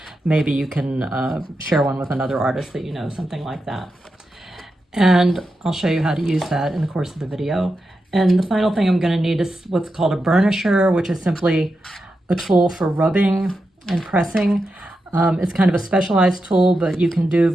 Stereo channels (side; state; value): both; normal; correlation 0.88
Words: Maybe you can share one with another artist that you know, something like that. And I'll show you how to use that in the course of the video. And the final thing I'm going to need is what's called a burnisher, which is simply a tool for rubbing and pressing. It's kind of a specialized tool, but you can do